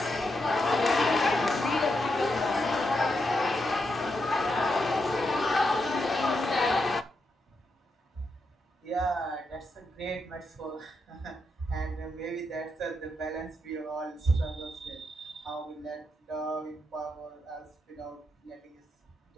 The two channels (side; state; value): both; normal; correlation 0.83